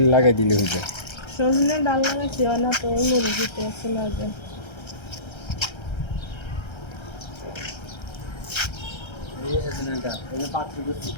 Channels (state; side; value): late; right; 1.3 ms